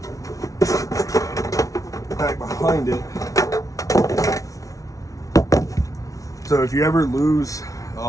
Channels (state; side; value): late; right; 0.17 ms